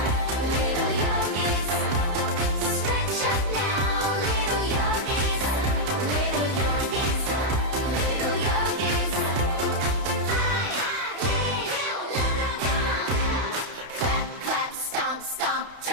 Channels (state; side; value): late; left; 31 ms